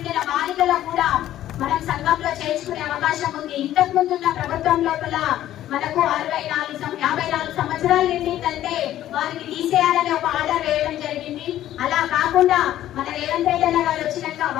బాలికలకు కూడా మనం సంఘంలో చేర్చుకునే అవకాశం ఉంది. ఇంతకు ముందున్న ప్రభుత్వం లోపల మనకు 54 సంవత్సరాలు నిండిందంటే వారిని తీసేయాలని ఒక ఆర్డర్ వేయడం జరిగింది. అలా కాకుండా మన రేవంత్ రెడ్డి గారు వచ్చినాక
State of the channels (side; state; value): right; quieter; 12.8 dB